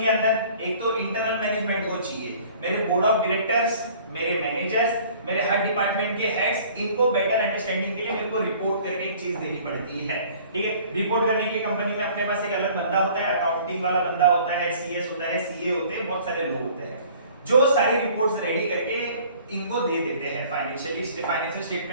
के अंदर? एक तो इंटरनल मैनेजमेंट को चाहिए, मेरे बोर्ड ऑफ डायरेक्टर्स, मेरे मैनेजर्स, मेरे हर डिपार्टमेंट के हेड्स, इनको बेटर अंडरस्टैंडिंग के लिए मेरे को रिपोर्ट करके एक चीज देनी पड़ती है, ठीक है। रिपोर्ट करने के लिए कंपनी में अपने पास एक अलग बंदा होता है, अकाउंटिंग वाला बंदा होता है, सीएस होता है, सीए होते हैं, बहुत सारे लोग होते हैं जो सारी रिपोर्ट्स रेडी करके इनको दे देते हैं। फाइनेंशियल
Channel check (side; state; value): both; inverted; correlation -0.51